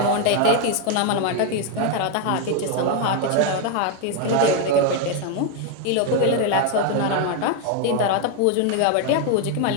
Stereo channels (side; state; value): both; different; correlation 0.01